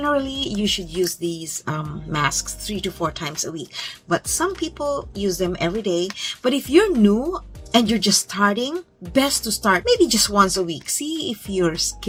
you should use these masks 3 to 4 times a week. But some people use them every day. But if you're new and you're just starting, best to start maybe just once a week. See if your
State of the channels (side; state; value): both; identical; correlation 1.00